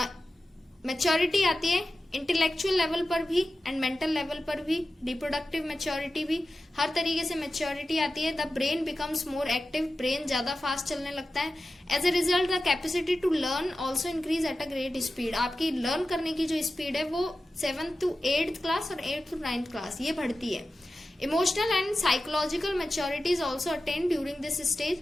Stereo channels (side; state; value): both; normal; correlation 0.93